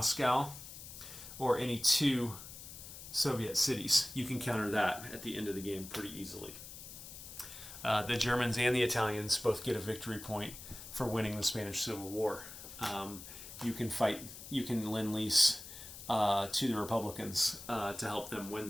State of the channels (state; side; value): noise; left; hiss, 13 dB below the sound